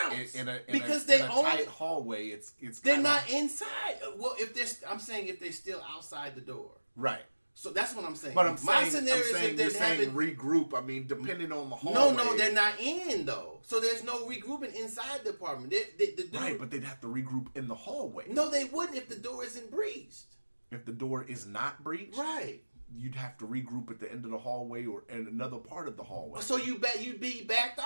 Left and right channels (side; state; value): both; inverted; correlation -1.00